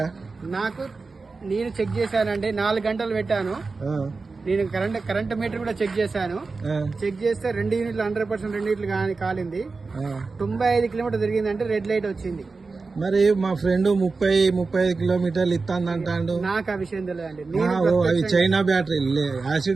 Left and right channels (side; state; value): left; quieter; 4.1 dB